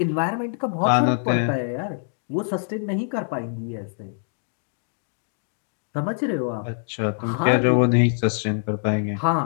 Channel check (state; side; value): silent; right; digital silence